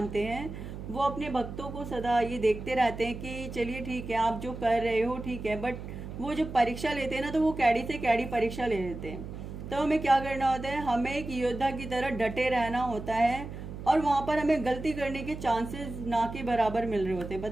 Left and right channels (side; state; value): right; noise; hum, 10 dB below the sound